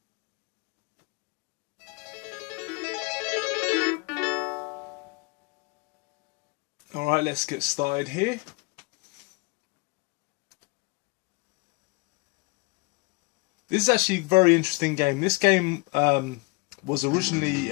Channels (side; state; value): right; quieter; 27.9 dB